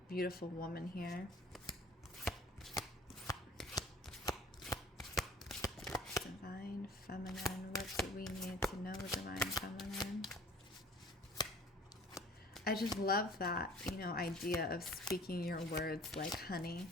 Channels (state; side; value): normal; both; correlation 0.50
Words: beautiful woman here. Divine feminine. What do we need to know, divine feminine? I just love that, idea of speaking your words like honey.